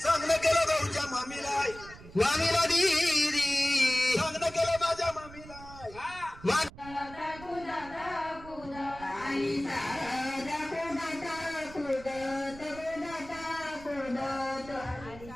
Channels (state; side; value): noise; right; rumble, 17 dB below the sound